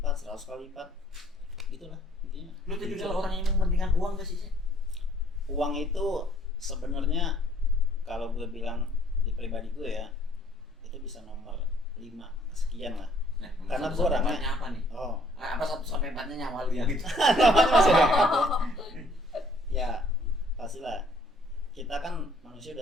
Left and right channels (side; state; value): both; normal; correlation 0.61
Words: 100 kali lipat, gitulah intinya. Lu tipikal orang yang mementingkan uang gak sih? Uang itu sebenarnya kalau gue bilang di pribadi gue ya, itu bisa nomor 5 sekian lah. Nah, Karena satu gua sampai orangnya- empatnya apa nih? Oh, Apa 1 sampai 4-nya nyawa lu yang itu? ya pastilah kita kan manusia manusia